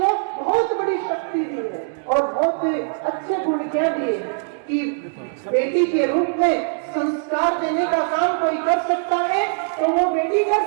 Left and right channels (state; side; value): silent; left; digital silence